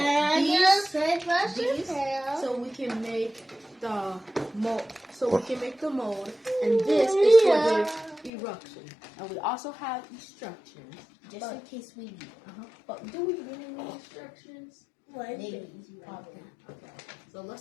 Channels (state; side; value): drops out; right; at 8.3 s